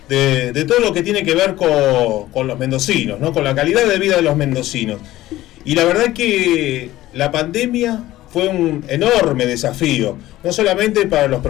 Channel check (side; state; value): right; quieter; 15.7 dB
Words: de todo lo que tiene que ver con los mendocinos, ¿no? Con la calidad de vida de los mendocinos. Y la verdad que la pandemia fue un enorme desafío, no solamente para los